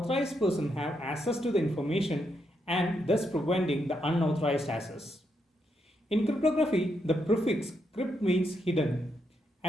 persons have access to the information and thus preventing the unauthorized access. In cryptography, the prefix crypt means hidden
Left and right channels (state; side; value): normal; both; correlation 0.80